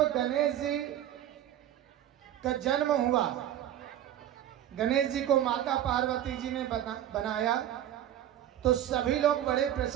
गणेश जी का जन्म हुआ, गणेश जी को माता पार्वती जी ने बनाया तो सभी लोग बड़े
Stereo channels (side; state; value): left; quieter; 11.5 dB